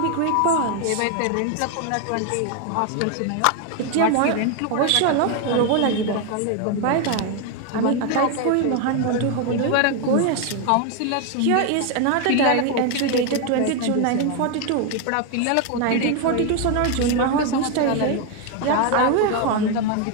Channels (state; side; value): different; both; correlation 0.01